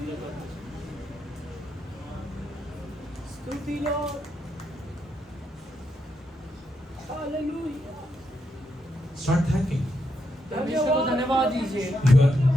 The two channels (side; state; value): both; normal; correlation 0.81